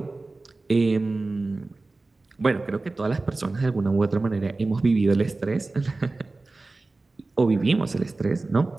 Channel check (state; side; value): quieter; left; 3.3 dB